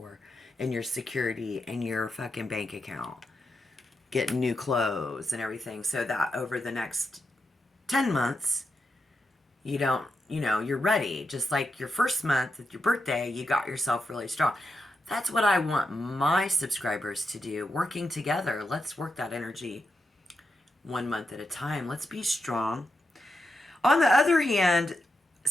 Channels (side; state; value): both; normal; correlation 0.86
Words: and your security and your fucking bank account. Getting new clothes and everything, so that over the next 10 months, you don't, you're ready. Just like your first month at your birthday, you got yourself really strong. That's what I want my subscribers to do. Working together. Let's work that energy 1 month at a time. Let's be strong. On the other hand,